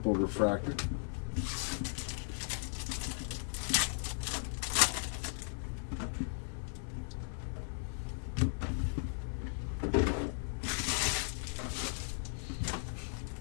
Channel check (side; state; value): right; silent; digital silence